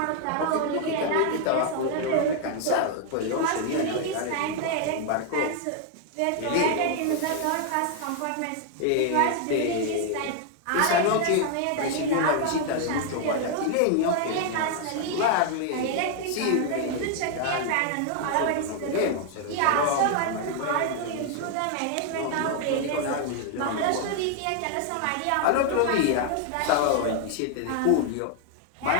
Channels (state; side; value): different; both; correlation 0.00